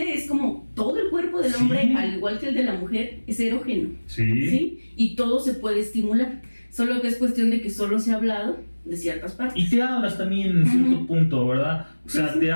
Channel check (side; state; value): both; inverted; correlation -1.00